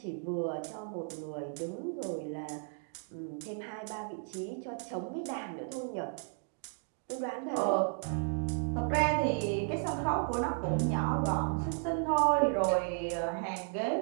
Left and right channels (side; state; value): left; silent; 55 dB below the other